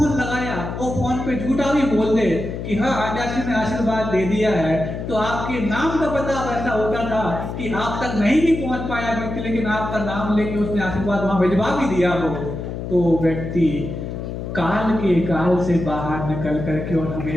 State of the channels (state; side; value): noise; left; hum, 6 dB below the sound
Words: लगाया और फोन पे झूठा भी बोल दे कि हाँ आचार्य ने आशीर्वाद दे दिया है, तो आपके नाम का पता वैसा होता था कि आप तक नहीं भी पहुंच पाया व्यक्ति, लेकिन आपका नाम लेके उसने आशीर्वाद वहां भिजवा भी दिया हो, तो व्यक्ति काल के काल से बाहर निकल करके और